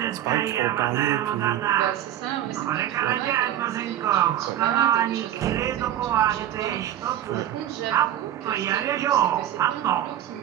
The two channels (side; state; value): left; quieter; 11.7 dB